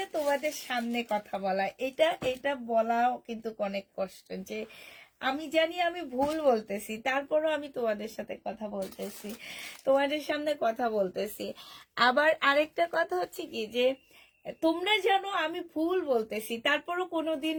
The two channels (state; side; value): identical; both; correlation 1.00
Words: তোমাদের সামনে কথা বলা, এটা এটা বলাও কিন্তু অনেক কষ্ট। যে আমি জানি আমি ভুল বলতেছি, তারপরও আমি তোমাদের সাথে কথা বলতেছি, তোমাদের সামনে কথা বলতেছি। আবার আরেকটা কথা হচ্ছে কি, যে তোমরা জানো আমি ভুল বলতেছি, তারপরও কোনোদিন